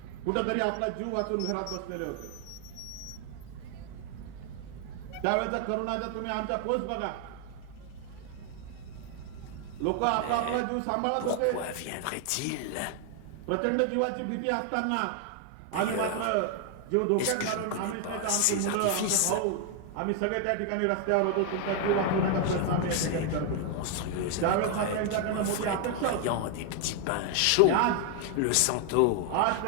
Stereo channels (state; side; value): different; both; correlation 0.00